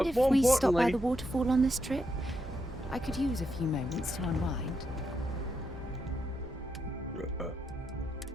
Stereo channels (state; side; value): normal; both; correlation 0.82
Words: if more we stop by importantly, the waterfall on this trip? I could use a few moments to unwind.